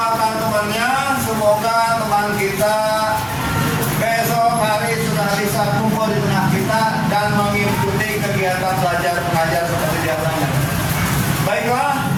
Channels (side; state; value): both; identical; correlation 1.00